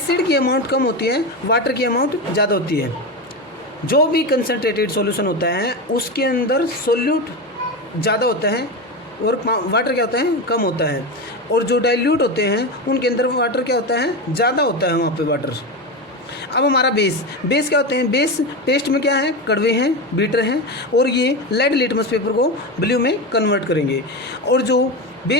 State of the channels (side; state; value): both; normal; correlation 0.18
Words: की अमाउंट कम होती है, वाटर की अमाउंट ज़्यादा होती है। जो भी कंसनट्रेटेड सॉल्यूशन होता है उसके अंदर सोल्यूट ज़्यादा होता है और वाटर क्या होता है? कम होता है। और जो डाइल्यूट होते हैं उनके अंदर वाटर क्या होता है? ज़्यादा होता है वहाँ पे वाटर। अब हमारा बेस क्या होते हैं? बेस टेस्ट में क्या है? कड़वे हैं, बीटर हैं, और ये लेड लिटमस पेपर को ब्लू में कन्वर्ट करेंगे। और जो